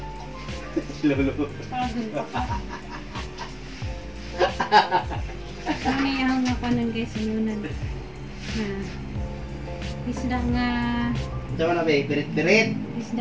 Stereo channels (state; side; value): identical; both; correlation 1.00